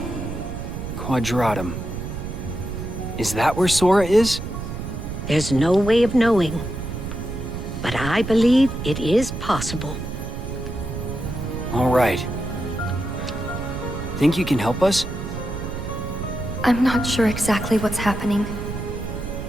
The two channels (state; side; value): noise; right; rumble, 6 dB below the sound